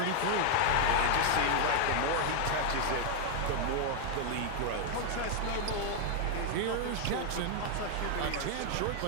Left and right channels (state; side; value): different; both; correlation 0.00